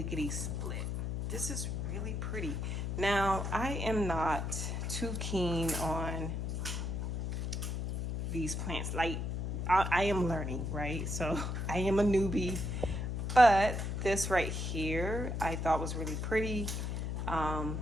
split. This is really pretty. Now, I am not too keen on these plants. Like, I am learning, right? So I am a newbie, but this right here, I thought was really pretty.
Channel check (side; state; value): left; noise; hum, 2 dB below the sound